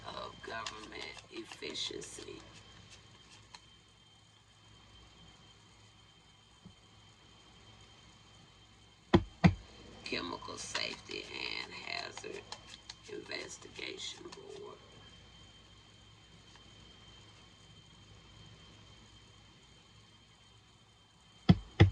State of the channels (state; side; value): identical; both; correlation 1.00